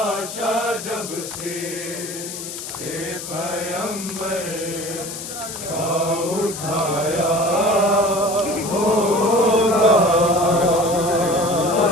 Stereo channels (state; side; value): noise; left; hiss, 9 dB below the sound